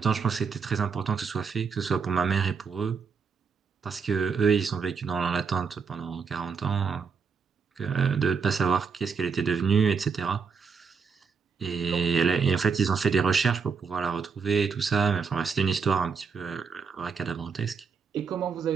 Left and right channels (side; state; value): left; quieter; 5.7 dB